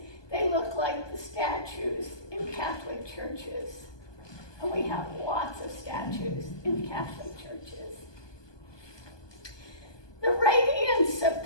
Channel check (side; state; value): right; late; 1.2 ms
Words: churches. And we have lots of statues in Catholic churches. The radiance of